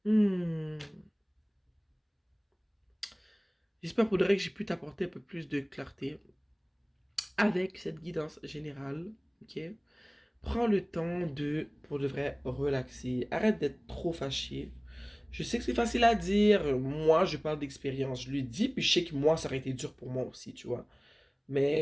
Hmm. J'espère pour de vrai que j'ai pu t'apporter un peu plus de clarté avec cette guidance générale. Ok? Prends le temps de, pour de vrai, relaxer. Arrête d'être trop fâché. Je sais que c'est facile à dire. Moi, je parle d'expérience. Je lui dis, puis je sais que moi, ça aurait été dur pour moi aussi, tu vois.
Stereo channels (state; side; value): identical; both; correlation 1.00